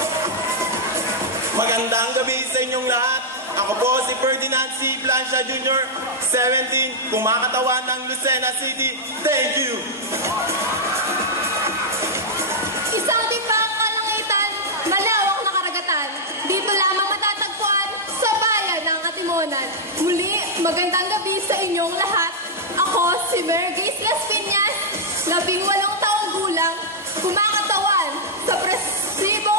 Magandang gabi sa inyong lahat. Ako po si Ferdinand C. Plancia Jr., 17, kumakatawan ng Lucena City. Thank you! Isang timbang kalangitan, malawak na karagatan. Dito lamang matatagpuan sa bayan ng Atimonan. Muli, magandang gabi sa inyong lahat. Ako si Mergis Las Piñas, 18 taong gulang, kumakatawan sa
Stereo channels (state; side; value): normal; both; correlation -0.05